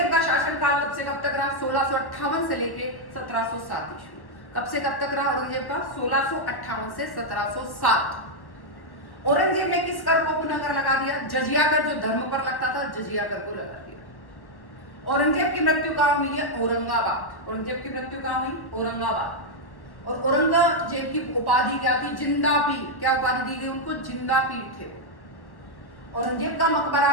का शासनकाल कब से कब तक रहा? 1658 से लेके 1707 ईस्वी। कब से कब तक रहा औरंगजेब का? 1658 से 1707। औरंगजेब ने किस कर को पुनः कर लगा दिया? जजिया कर, जो धर्म पर लगता था, जजिया कर को लगा दिया। औरंगजेब की मृत्यु कहां हुई है? औरंगाबाद। औरंगजेब की मृत्यु कहां हुई? औरंगाबाद। और औरंगजेब की उपाधि क्या थी? जिंदा पीर। क्या उपाधि दी गई उनको? जिंदा पीर थे वो। औरंगजेब का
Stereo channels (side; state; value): right; late; 1.1 ms